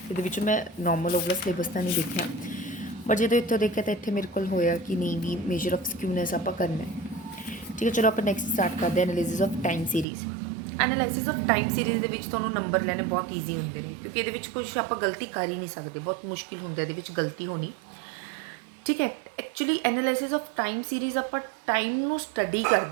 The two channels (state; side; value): drops out; left; at 10.1 s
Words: ਇਹਦੇ ਵਿੱਚ ਮੈਂ ਨੋਰਮਲ ਉਹ ਵਾਲਾ ਸਿਲੇਬਸ ਤਾਂ ਨਹੀਂ ਦੇਖਿਆ, ਬਟ ਜਦੋਂ ਇੱਥੋਂ ਦੇਖਿਆ ਤਾਂ ਇੱਥੇ ਮੇਰੇ ਕੋਲ ਹੋਇਆ ਕਿ ਨਹੀਂ ਵੀ ਮੇਜਰ ਆਫ ਸਕਿਊਨੈਸ ਆਪਾਂ ਕਰਨਾ ਹੈ। ਠੀਕ ਹੈ, ਚਲੋ ਆਪਾਂ ਨੈਕਸਟ ਸਟਾਰਟ ਕਰਦੇ ਹਾਂ analysis of time series. Analysis of time series ਦੇ ਵਿੱਚ ਤੁਹਾਨੂੰ ਨੰਬਰ ਲੈਣੇ ਬਹੁਤ ਈਜ਼ੀ ਹੁੰਦੇ ਨੇ, ਕਿਉਂਕਿ ਇਹਦੇ ਵਿੱਚ ਕੁਝ ਆਪਾਂ ਗਲਤੀ ਕਰ ਹੀ ਨਹੀਂ ਸਕਦੇ, ਬਹੁਤ ਮੁਸ਼ਕਿਲ ਹੁੰਦਾ ਇਹਦੇ ਵਿੱਚ ਗਲਤੀ ਹੋਣੀ। ਠੀਕ ਹੈ, actually analysis of time series ਆਪਾਂ ਟਾਈਮ ਨੂੰ ਸਟੱਡੀ